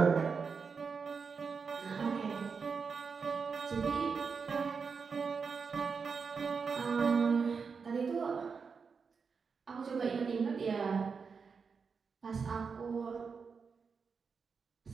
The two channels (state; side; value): quieter; left; 5.5 dB